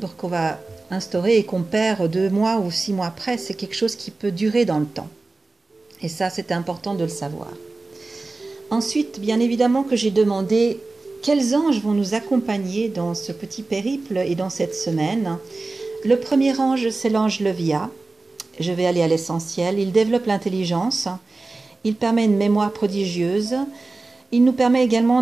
qu'on va instaurer et qu'on perd 2 mois ou 6 mois après, c'est quelque chose qui peut durer dans le temps. Et ça, c'est important de le savoir. Ensuite, bien évidemment que j'ai demandé quels anges vont nous accompagner dans ce petit périple et dans cette semaine. Le premier ange, c'est l'ange Levia. Je vais aller à l'essentiel. Il développe l'intelligence, il permet une mémoire prodigieuse, il nous permet également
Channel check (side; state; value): left; quieter; 3.4 dB